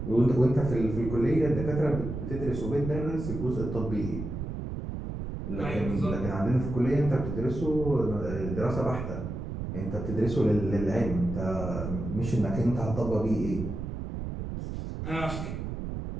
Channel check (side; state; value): right; noise; rumble, 5 dB below the sound